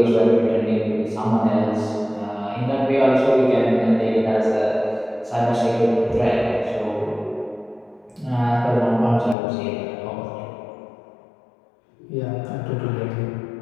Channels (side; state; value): right; drops out; at 9.3 s